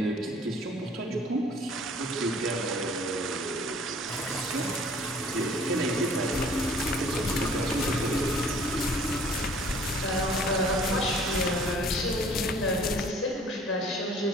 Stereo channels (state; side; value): normal; both; correlation 0.53